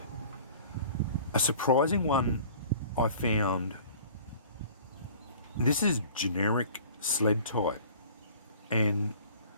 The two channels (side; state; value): both; inverted; correlation -0.47